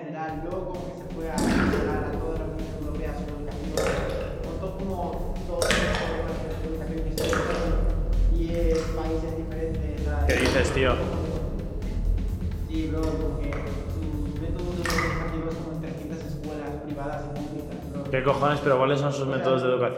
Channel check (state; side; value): identical; both; correlation 1.00